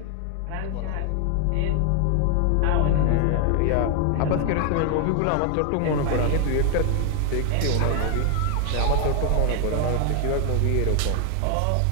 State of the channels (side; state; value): both; different; correlation 0.00